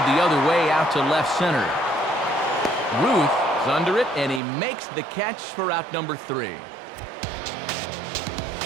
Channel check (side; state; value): left; drops out; at 4.4 s